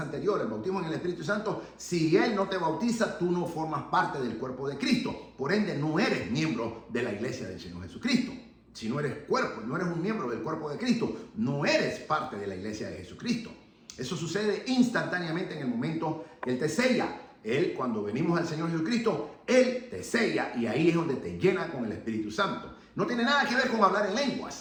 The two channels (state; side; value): identical; both; correlation 1.00